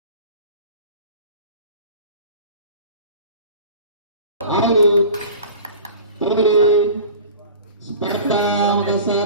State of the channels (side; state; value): both; inverted; correlation -0.39